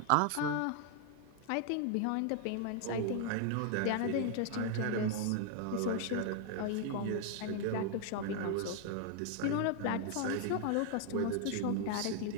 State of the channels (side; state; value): both; different; correlation 0.00